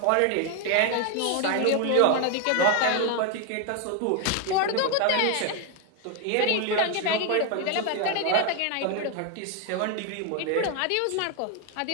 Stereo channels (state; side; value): different; both; correlation 0.01